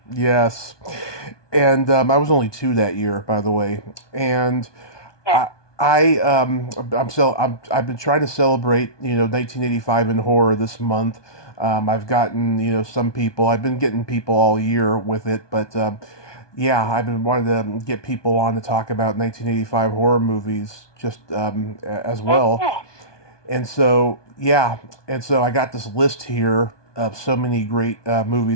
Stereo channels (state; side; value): late; right; 1.2 ms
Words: Yes, and I was only 2 that year, by the way, and Yeah. I've been trying to celebrate 1985 in horror this month. I've gotten some people. I've been getting people all year with it, but Yeah, I've been wanting to get people on to talk about 1985 horror movies just as well. Mhm. And so, yeah, and so I got this list here of so many great